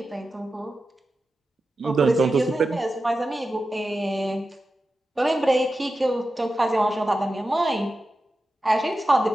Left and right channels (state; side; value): normal; both; correlation 0.92